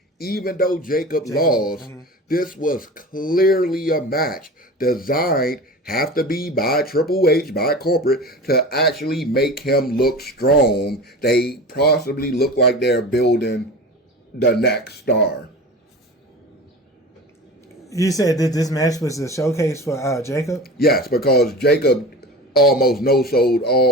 even though Jacob lost, this was clearly a match designed, have to be by Triple H, by corporate, to actually make him look strong. They possibly look like they're building the next star. You said that this match was a showcase for Jacob? Yes, because Jacob almost no-sold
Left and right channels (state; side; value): normal; both; correlation 0.33